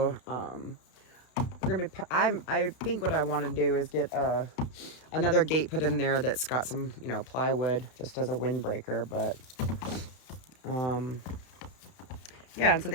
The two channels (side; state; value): right; late; 32 ms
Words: we're gonna be I think what I want to do is get another gate put in there that's got some, you know, plywood just as a windbreaker. But yeah, and so